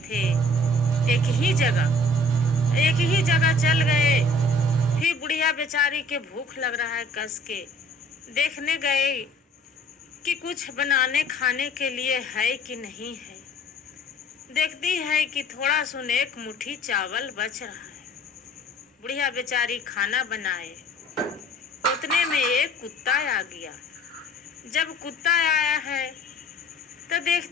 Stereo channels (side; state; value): both; normal; correlation 0.53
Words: एक ही जगह चल गए। फिर बुढ़िया बेचारी के भूख लग रहा है, कस के देखने गए कि कुछ बनाने खाने के लिए है कि नहीं है। देखती है कि थोड़ा सुन एक मुट्ठी चावल बच रहा है। बुढ़िया बेचारी खाना बनाए, उतने में एक कुत्ता आ गया। जब कुत्ता आया है तो